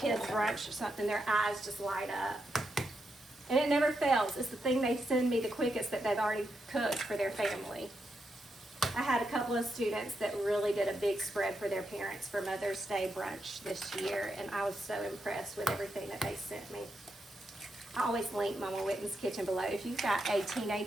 brunch or something, their eyes just light up. And it never fails. It's the thing they send me the quickest that they've already cooked for their family. I had a couple of students that really did a big spread for their parents for Mother's Day brunch this year, and I was so impressed with everything that they sent me. I always link Mama Whitten's kitchen below. If you've got a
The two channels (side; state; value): both; normal; correlation 0.84